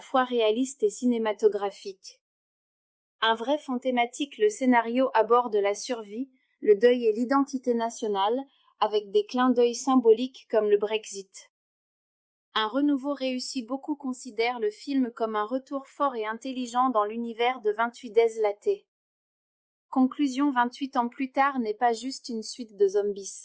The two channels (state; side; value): identical; both; correlation 1.00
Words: réaliste et cinématographique. Un vrai fond thématique. Le scénario aborde la survie, le deuil et l'identité nationale, avec des clins d'œil symboliques comme le Brexit. Un renouveau réussi. Beaucoup considèrent le film comme un retour fort et intelligent dans l'univers de 28 Days Laté. Conclusion 28 ans plus tard n'est pas juste une suite de